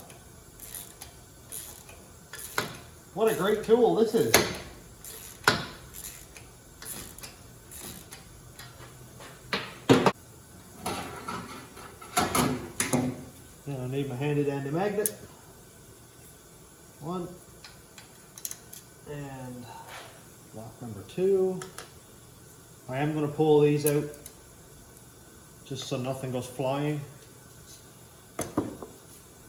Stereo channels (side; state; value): both; identical; correlation 1.00